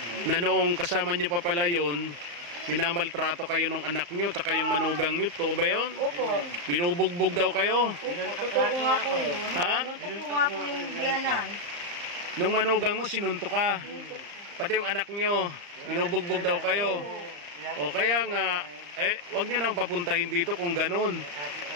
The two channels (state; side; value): late; left; 34 ms